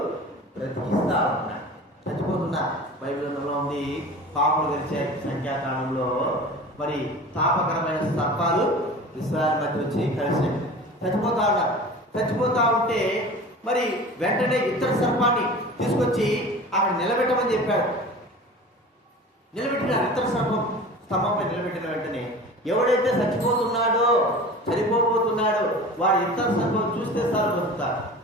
బ్రతికిస్తా ఉన్నాడు. చచ్చిపోతున్నా బైబిల్లో ఉంది, పాములు గడిచాయి సంఖ్యాకాలంలో, మరి తాపకరమైన సర్పాలు ఇశ్రాయేలు మధ్య వచ్చి కలిసి చచ్చిపోతా ఉన్నారు. చచ్చిపోతా ఉంటే మరి వెంటనే ఇతర సర్పాన్ని తీసుకొచ్చి అక్కడ నిలబెట్టమని చెప్పాడు. నిలబెట్టిన ఇతర సర్పం స్తంభంపై నిలబెట్టిన వెంటనే ఎవడైతే చచ్చిపోతున్నాడో, చనిపోబోతున్నాడో వాడు ఇతర సర్పం చూస్తే సార్ బతుకుతారు.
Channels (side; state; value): both; normal; correlation 0.38